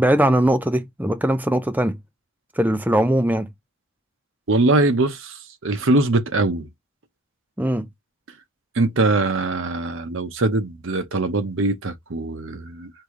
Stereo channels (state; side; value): normal; both; correlation 0.57